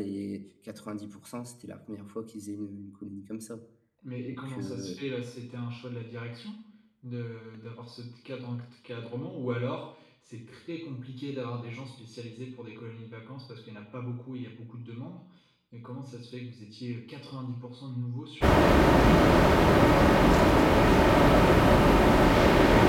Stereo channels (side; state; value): both; identical; correlation 1.00